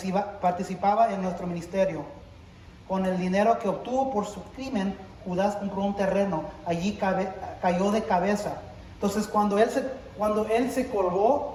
en nuestro ministerio. Con el dinero que obtuvo por su crimen, Judas compró un terreno. Allí cayó de cabeza. Entonces, cuando él se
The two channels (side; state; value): both; identical; correlation 1.00